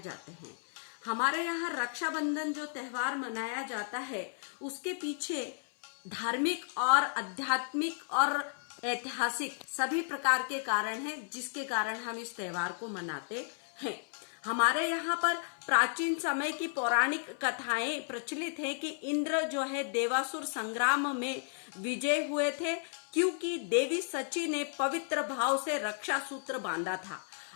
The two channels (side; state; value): right; silent; 55 dB below the other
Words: हैं। हमारे यहाँ रक्षाबंधन जो त्योहार मनाया जाता है, उसके पीछे धार्मिक और आध्यात्मिक और ऐतिहासिक सभी प्रकार के कारण हैं, जिसके कारण हम इस त्योहार को मनाते हैं। हमारे यहाँ पर प्राचीन समय की पौराणिक कथाएं प्रचलित हैं कि इंद्र जो है देवासुर संग्राम में विजय हुए थे, क्योंकि देवी सची ने पवित्र भाव से रक्षा सूत्र बांधा था।